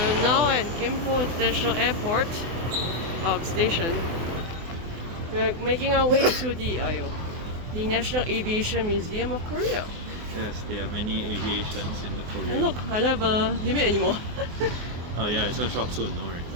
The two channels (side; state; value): left; late; 24 ms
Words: are now at Gimpo International Airport station. We're making our way to the National Aviation Museum of Korea. Yes, there are many aviations in the Korea. And look, I don't have a limit anymore. Oh yeah, it's gonna show up soon, don't worry.